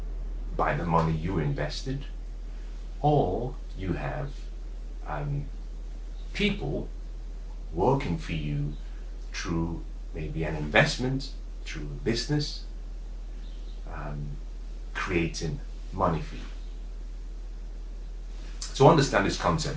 by the money you invested, or you have people working for you through maybe an investment, through a business, creating money for you. To understand this concept,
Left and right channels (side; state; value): both; identical; correlation 1.00